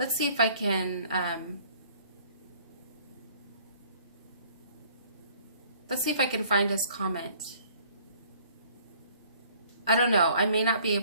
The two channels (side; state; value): both; inverted; correlation -0.56